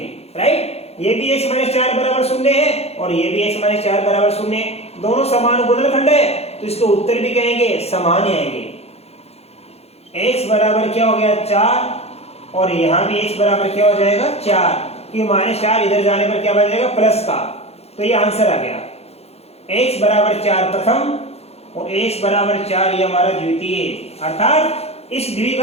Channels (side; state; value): right; late; 0.30 ms